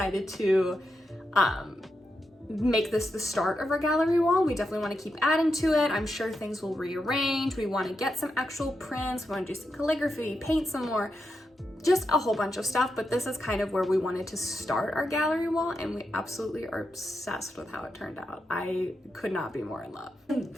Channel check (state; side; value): normal; both; correlation 0.86